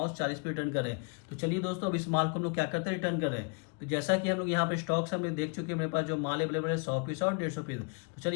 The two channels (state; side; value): quieter; right; 35.2 dB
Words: 40 पे रिटर्न करें। तो चलिए दोस्तों अब इस माल को हम लोग क्या करते हैं, रिटर्न करें। तो जैसा कि हम लोग यहाँ पर स्टॉक से हमने देख चुके हैं, मेरे पास जो माल अवेलेबल है 100 पीस और 150 पीस। तो